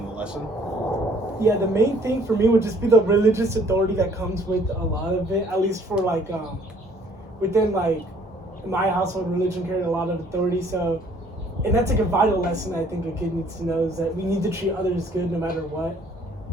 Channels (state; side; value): normal; both; correlation 0.59